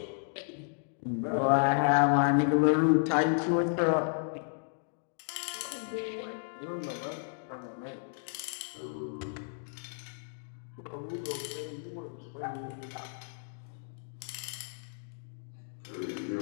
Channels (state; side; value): silent; right; digital silence